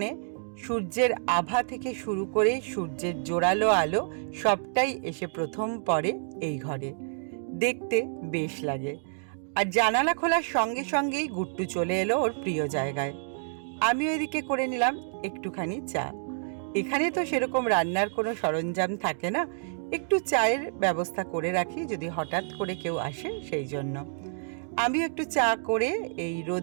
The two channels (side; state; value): left; silent; digital silence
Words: সূর্যের আভা থেকে শুরু করে সূর্যের জোরালো আলো সবটাই এসে প্রথম পড়ে এই ঘরে। দেখতে বেশ লাগে। আর জানালা খোলার সঙ্গে সঙ্গেই গুট্টু চলে এলো ওর প্রিয় জায়গায়। আমিও এদিকে করে নিলাম একটুখানি চা। এখানে তো সেরকম রান্নার কোনো সরঞ্জাম থাকে না, একটু চায়ের ব্যবস্থা করে রাখি যদি হঠাৎ করে কেউ আসে সেই জন্য। আমি একটু চা করে এই